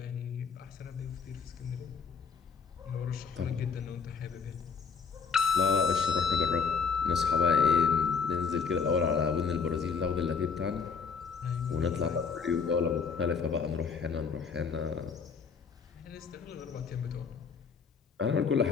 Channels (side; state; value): right; quieter; 5.8 dB